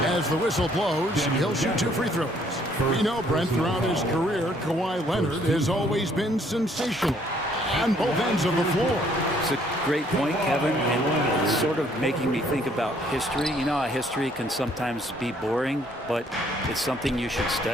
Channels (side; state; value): both; normal; correlation 0.64